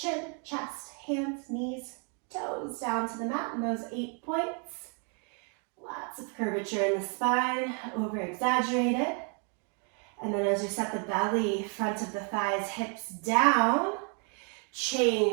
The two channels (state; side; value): quieter; left; 38.9 dB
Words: chest, hands, knees, toes down to the mat in those 8 points. Lots of curvature in the spine, over exaggerated. And then as you set the belly, front of the thighs, hips down,